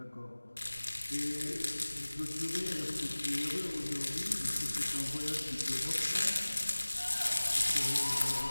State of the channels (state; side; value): inverted; both; correlation -1.00